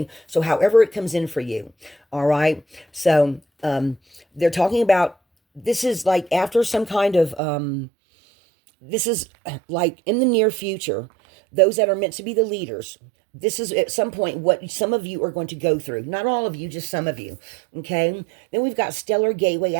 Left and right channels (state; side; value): drops out; left; at 7.4 s